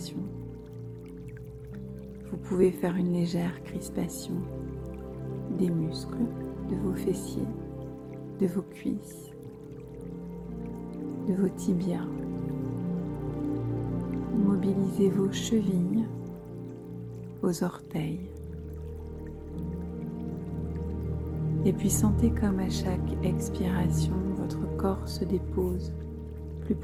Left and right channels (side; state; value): both; identical; correlation 1.00